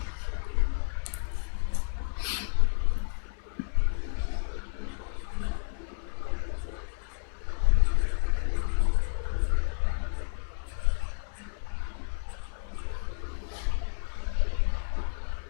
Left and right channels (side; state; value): right; silent; 57 dB below the other